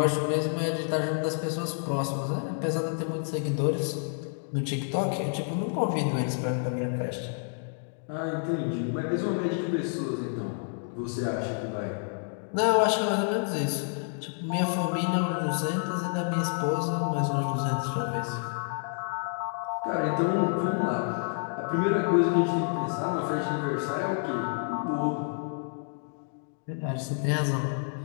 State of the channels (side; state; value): right; silent; 59 dB below the other